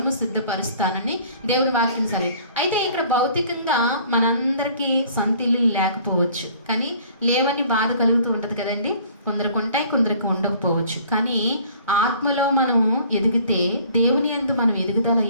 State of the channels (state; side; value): inverted; both; correlation -0.53